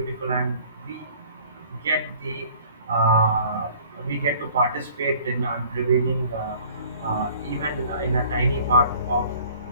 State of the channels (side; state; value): both; inverted; correlation -0.52